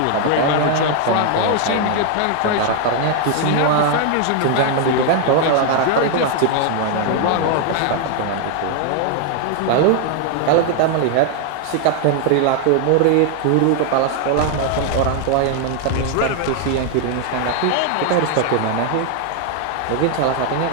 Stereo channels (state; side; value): different; both; correlation 0.00